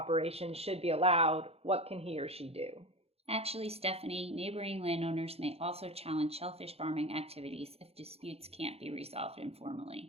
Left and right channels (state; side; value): late; left; 0.29 ms